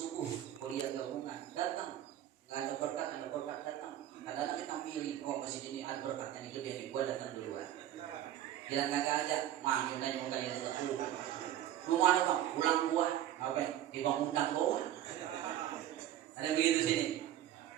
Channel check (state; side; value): quieter; left; 12.0 dB